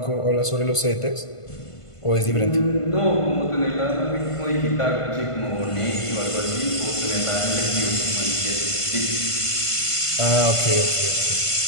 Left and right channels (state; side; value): late; right; 1.5 ms